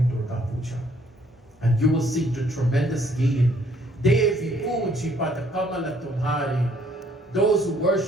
Durga Puja. And you will see the tremendous gain. Devi Puji Pada Kamala Tumhari. Those who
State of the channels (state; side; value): normal; both; correlation 0.64